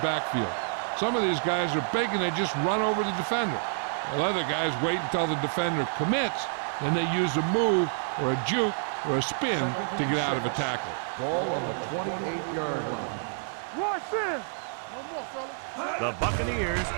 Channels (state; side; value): silent; left; 59 dB below the other